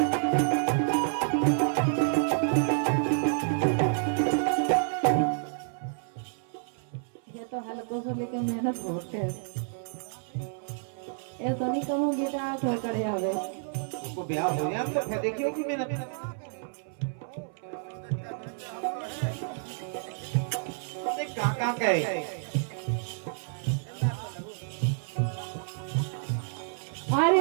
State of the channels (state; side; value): silent; left; 58 dB below the other